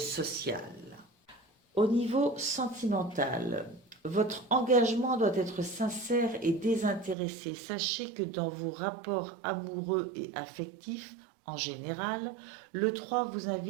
Au niveau sentimental, votre engagement doit être sincère et désintéressé. Sachez que dans vos rapports amoureux et affectifs, en général, le 3 vous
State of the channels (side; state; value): left; drops out; at 7.2 s